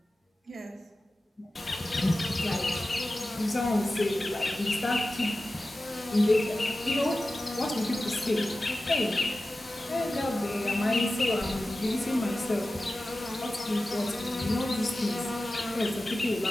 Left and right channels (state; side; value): normal; both; correlation 0.95